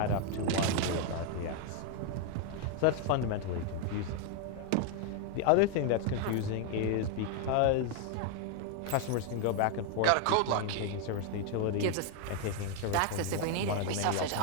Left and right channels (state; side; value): different; both; correlation 0.00